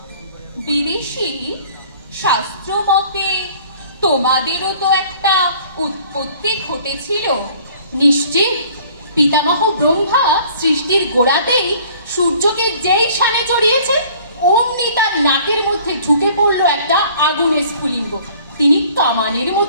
বিদেশি শাস্ত্র মতে তোমাদেরও তো একটা উৎপত্তি ঘটেছিল নিশ্চিত। পিতামহ ব্রহ্মা সৃষ্টির গোড়াতেই সূর্যকে যেই সানে চড়িয়েছে, অমনি তার নাকের মধ্যে ঢুকে পড়লো একটা আগুনের স্ফুলিঙ্গ। তিনি কামানের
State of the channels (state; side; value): inverted; both; correlation -0.52